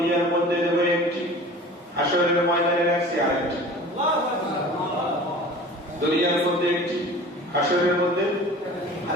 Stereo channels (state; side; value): normal; both; correlation 0.41